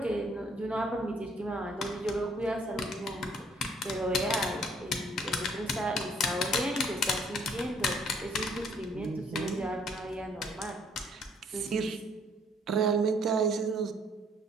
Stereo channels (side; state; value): both; normal; correlation 0.63